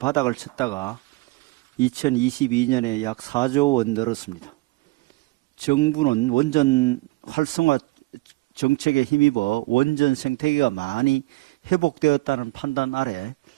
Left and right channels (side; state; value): left; quieter; 22.2 dB